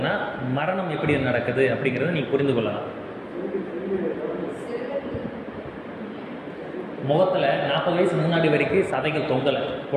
மரணம் எப்படி நடக்குது அப்படிங்கிறத நீங்கள் புரிந்து கொள்ளலாம். முகத்தில் 40 வயசு முன்னாடி வரைக்கும் சதைகள் தொங்கலை.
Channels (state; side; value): identical; both; correlation 1.00